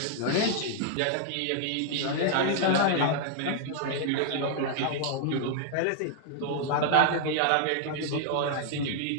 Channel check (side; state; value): both; different; correlation 0.00